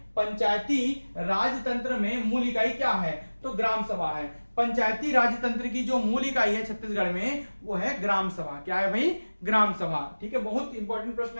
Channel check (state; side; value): inverted; both; correlation -1.00